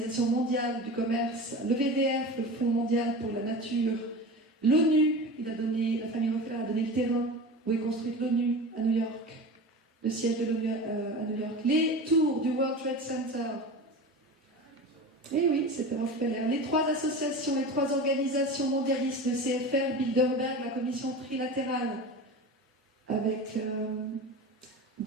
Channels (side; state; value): both; normal; correlation 0.31